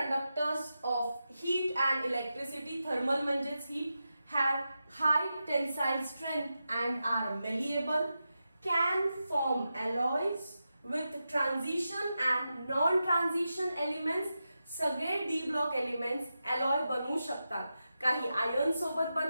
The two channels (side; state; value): both; inverted; correlation -0.90